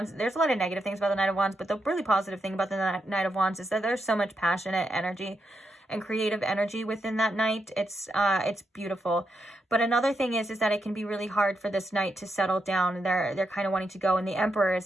there's a lot of negative things about the Knight of Wands, but the really positive thing about the Knight of Wands is that there's so much passionate energy and creative energy within that knight. It's beautiful. But another thing is that it can be really hard for this knight to settle down. They're kind of wanting to go, and the Emperor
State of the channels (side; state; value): both; normal; correlation 0.83